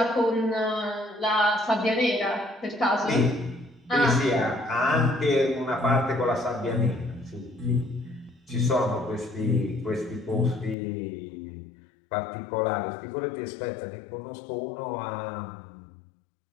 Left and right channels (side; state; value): right; drops out; at 10.8 s